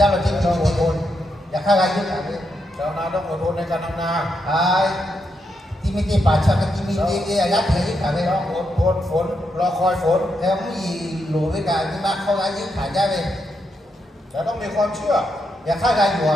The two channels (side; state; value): both; normal; correlation 0.82